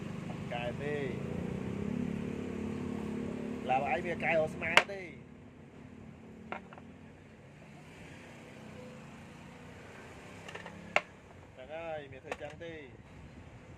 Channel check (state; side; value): identical; both; correlation 1.00